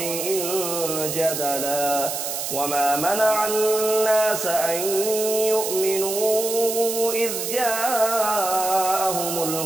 جدلا وما منع الناس أن يؤمنوا إذ جاءهم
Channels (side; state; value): right; noise; hiss, 4 dB below the sound